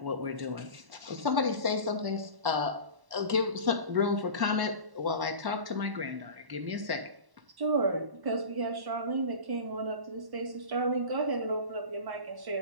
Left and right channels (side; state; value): left; late; 1.1 ms